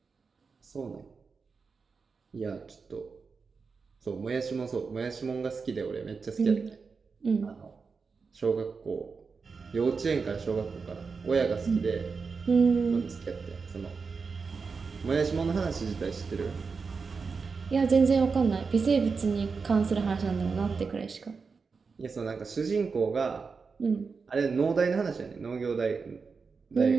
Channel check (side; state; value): left; quieter; 5.0 dB